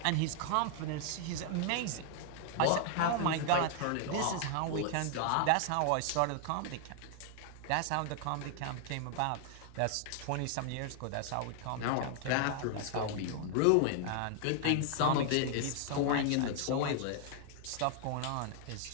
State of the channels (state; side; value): different; both; correlation 0.00